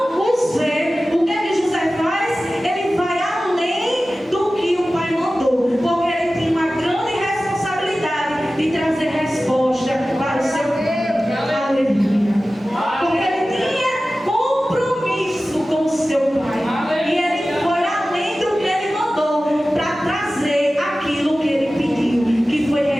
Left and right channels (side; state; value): both; normal; correlation 0.96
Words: os vê. O que é que José faz? Ele vai além do que o pai mandou, porque ele tem uma grande responsabilidade de trazer resposta para o seu pai. Aleluia. Porque ele tinha compromisso com o seu pai. E ele foi além do que ele mandou para trazer aquilo que ele pediu, que foi